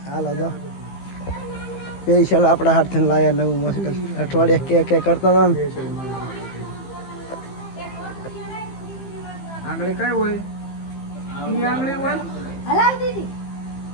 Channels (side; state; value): right; late; 15 ms